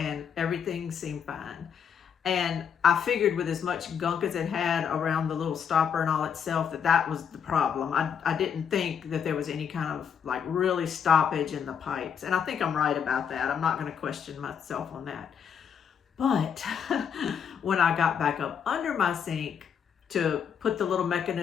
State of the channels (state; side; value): quieter; right; 7.5 dB